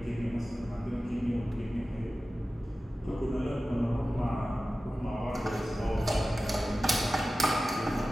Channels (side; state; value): both; normal; correlation 0.95